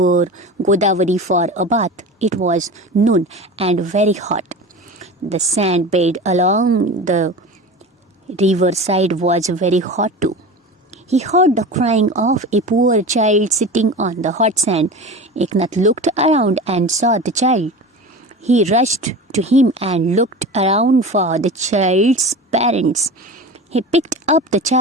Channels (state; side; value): normal; both; correlation 0.31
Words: Godavari for a bath. It was noon and very hot. The sand bed along the riverside was very hot too. He heard the crying of a poor child sitting on the hot sand. Eknath looked around and saw the child. He rushed to him and looked around for the child's parents. He picked up the